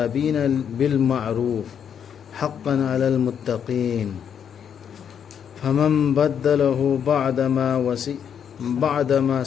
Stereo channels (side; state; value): right; quieter; 8.2 dB